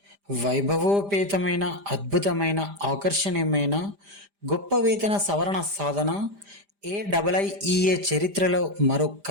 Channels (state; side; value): late; left; 5.0 ms